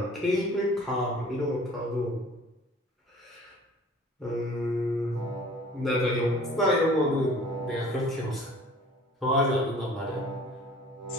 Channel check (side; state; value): both; normal; correlation 0.49